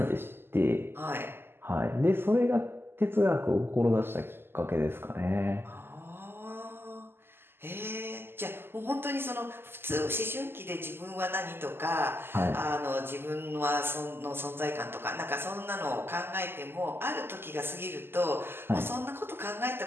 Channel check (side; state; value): left; late; 0.11 ms